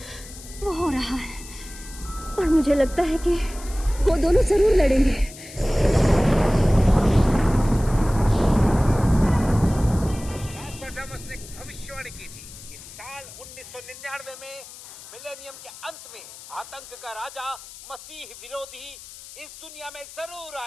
वो हो रहा है, और मुझे लगता है कि वो दोनों जरूर लड़ेंगे। नॉस्ट्राडामस ने भविष्यवाणी की थी कि साल 1999 में मिलेनियम के अंत में आतंक का राजा मसीह विरोधी इस दुनिया में जरूर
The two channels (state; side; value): noise; left; hiss, 16 dB below the sound